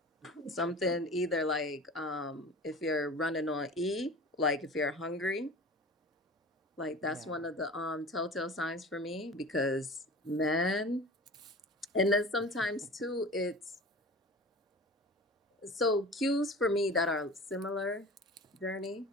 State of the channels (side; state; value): both; normal; correlation 0.38